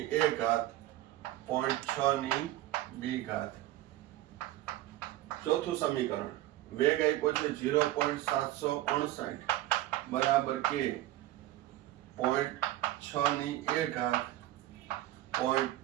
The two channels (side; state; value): left; quieter; 15.3 dB